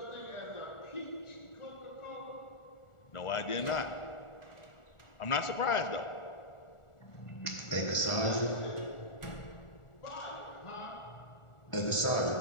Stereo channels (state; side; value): late; right; 1.4 ms